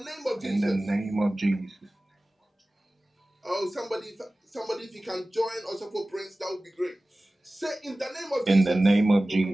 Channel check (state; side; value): normal; both; correlation 0.97